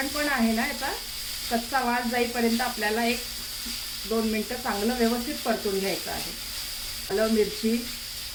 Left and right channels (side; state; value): both; identical; correlation 1.00